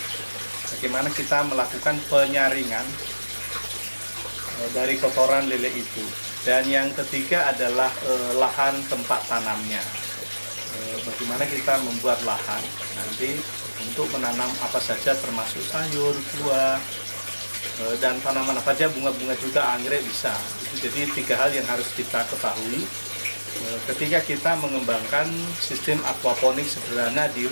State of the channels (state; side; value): inverted; both; correlation -1.00